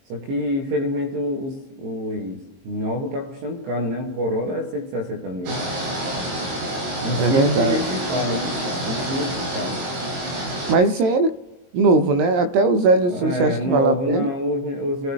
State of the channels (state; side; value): late; left; 22 ms